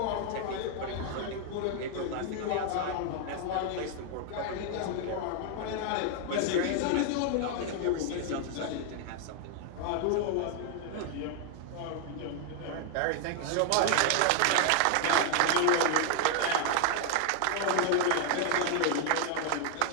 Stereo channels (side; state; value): both; different; correlation 0.00